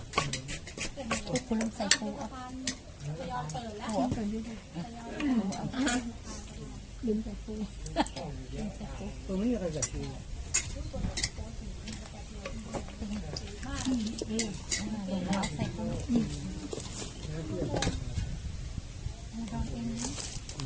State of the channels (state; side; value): identical; both; correlation 1.00